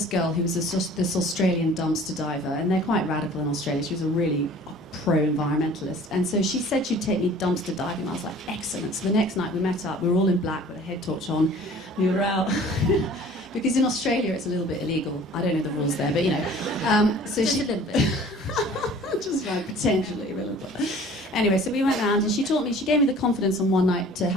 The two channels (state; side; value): normal; both; correlation 0.48